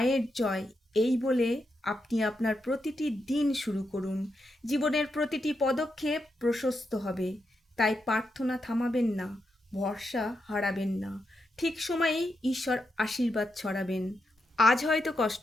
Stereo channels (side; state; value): both; normal; correlation 0.85